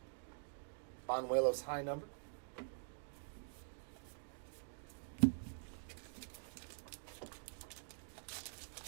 Banuelos high number.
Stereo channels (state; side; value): silent; left; digital silence